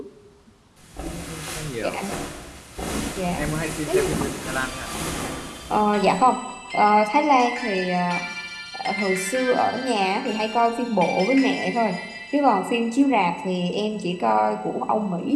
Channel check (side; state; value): both; identical; correlation 1.00